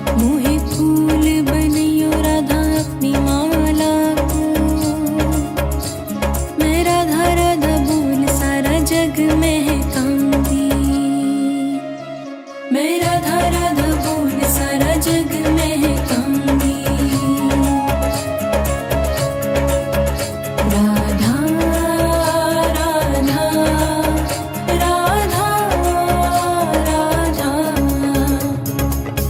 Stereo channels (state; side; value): identical; both; correlation 1.00